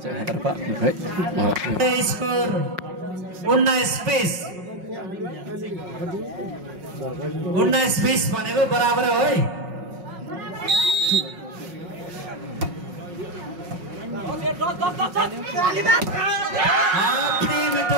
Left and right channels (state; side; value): late; left; 5.5 ms